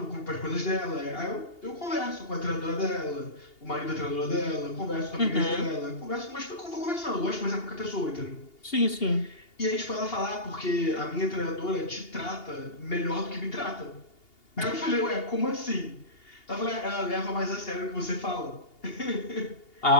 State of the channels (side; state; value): right; late; 2.8 ms